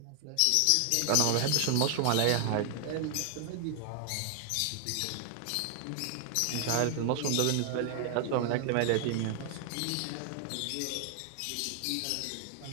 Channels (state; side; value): different; both; correlation 0.00